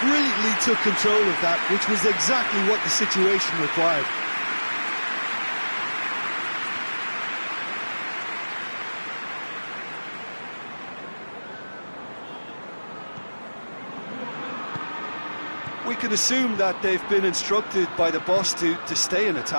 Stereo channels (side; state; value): both; inverted; correlation -1.00